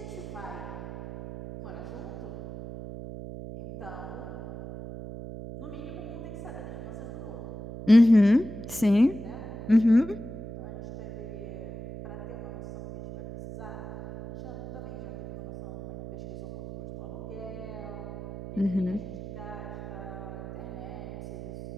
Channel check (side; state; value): right; noise; hum, 10 dB below the sound